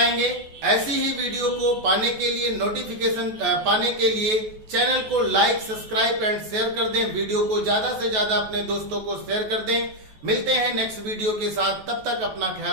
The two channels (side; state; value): left; late; 14 ms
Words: ऐसी ही वीडियो को पाने के लिए, नोटिफिकेशन पाने के लिए चैनल को लाइक, सब्सक्राइब एंड शेयर कर दें। वीडियो को ज्यादा से ज्यादा अपने दोस्तों को शेयर कर दें। मिलते हैं नेक्स्ट वीडियो के साथ, तब तक अपना